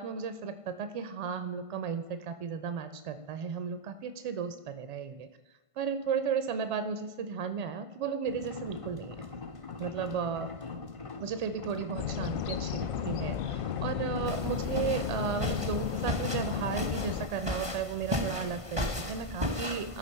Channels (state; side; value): late; left; 1.5 ms